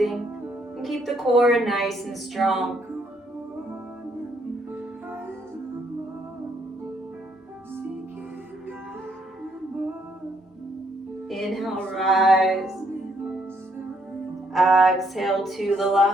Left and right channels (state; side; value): normal; both; correlation 0.71